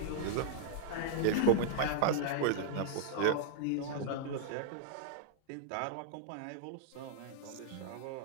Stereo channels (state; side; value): different; both; correlation -0.01